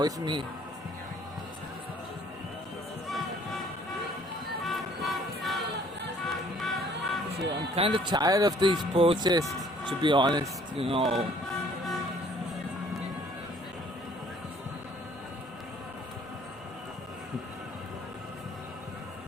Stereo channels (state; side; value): normal; both; correlation 0.58